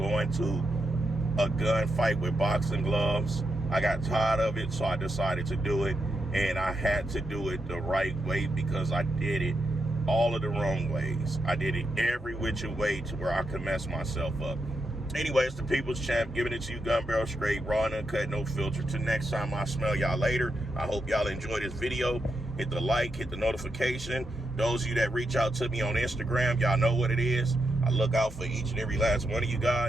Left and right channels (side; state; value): both; normal; correlation 0.84